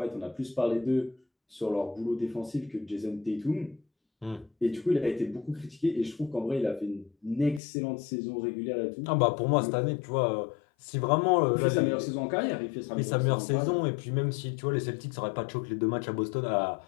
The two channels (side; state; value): right; drops out; at 7.6 s